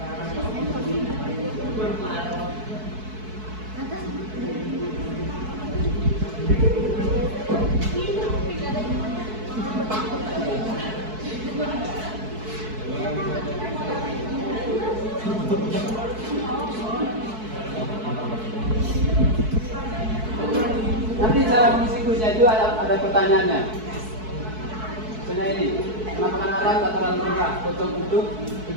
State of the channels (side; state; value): left; late; 4.6 ms